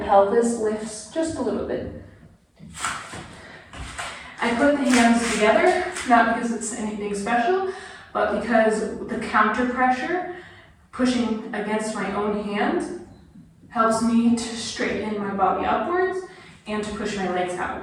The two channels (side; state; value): both; identical; correlation 1.00